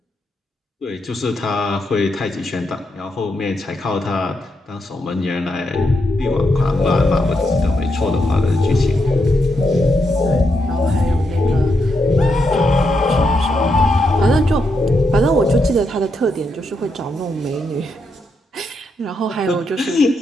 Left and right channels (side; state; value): both; normal; correlation 0.82